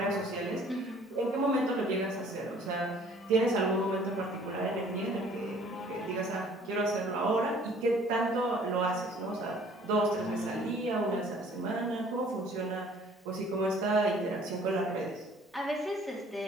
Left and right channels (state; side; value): normal; both; correlation 0.55